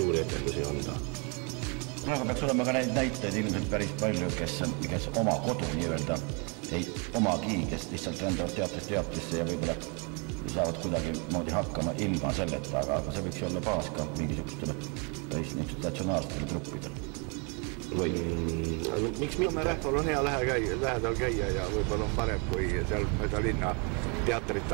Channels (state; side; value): quieter; left; 34.4 dB